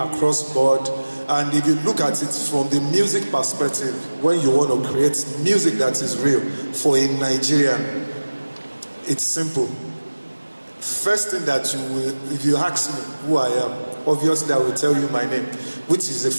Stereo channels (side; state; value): both; inverted; correlation -1.00